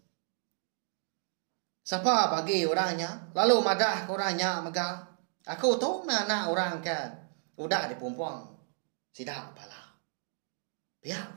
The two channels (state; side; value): silent; left; 56 dB below the other